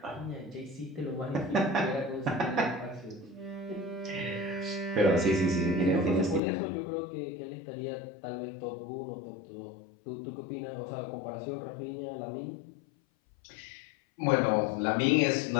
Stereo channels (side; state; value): right; drops out; at 6.4 s